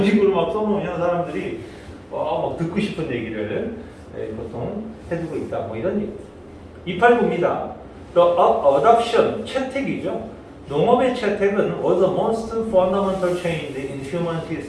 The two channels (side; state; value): both; identical; correlation 1.00